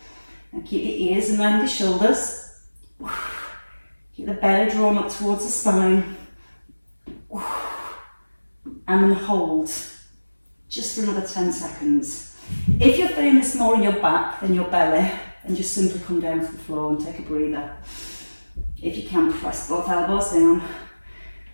And keep the ears around the shoulders. Keep the belly drawn up towards the spine. And then hold. Just for another 10 seconds. If you're feeling this more in your back than your belly, then just simply come down to the floor and take a breather. If you can, press both elbows down.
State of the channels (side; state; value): both; inverted; correlation -1.00